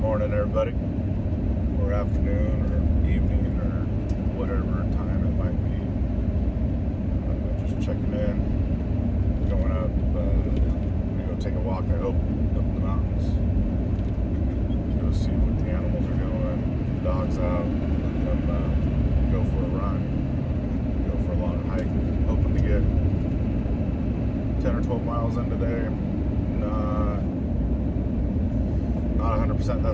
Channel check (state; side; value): identical; both; correlation 1.00